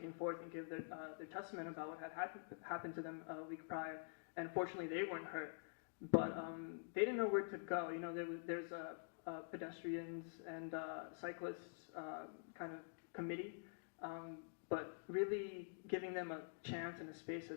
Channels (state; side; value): silent; right; digital silence